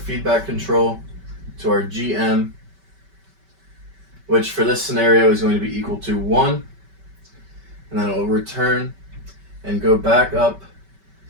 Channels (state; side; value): late; left; 5.2 ms